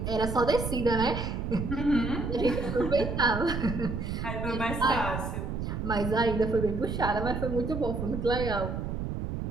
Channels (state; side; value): noise; right; rumble, 3 dB below the sound